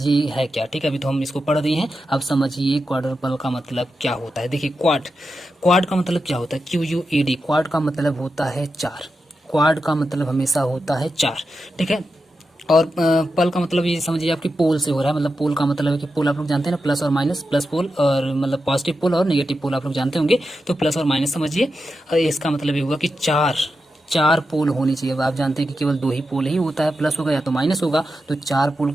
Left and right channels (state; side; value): normal; both; correlation 0.89